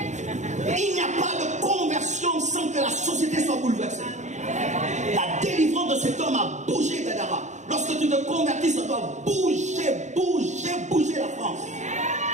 Il n'y a pas de conversion sans que la société soit bouleversée. La délivrance de cet homme a bougé Gadara. Lorsque tu te convertis, ça doit bouger la France.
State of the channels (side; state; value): left; late; 0.34 ms